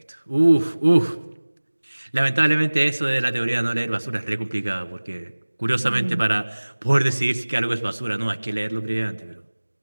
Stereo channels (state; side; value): inverted; both; correlation -1.00